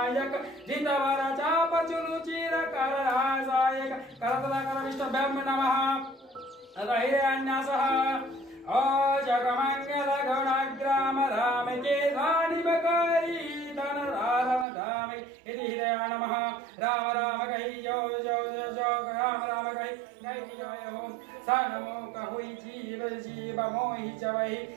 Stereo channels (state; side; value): drops out; left; at 14.7 s